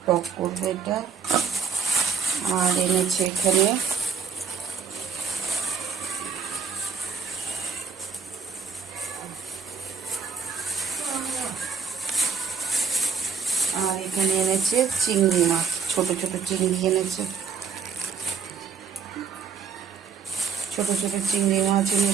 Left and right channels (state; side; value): quieter; left; 6.0 dB